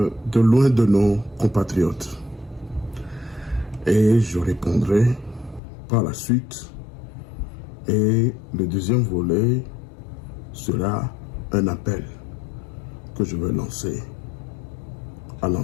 loin de nos compatriotes. Et je répondrai par la suite. Et le deuxième volet sera un appel que je vais lancer à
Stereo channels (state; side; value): drops out; right; at 5.6 s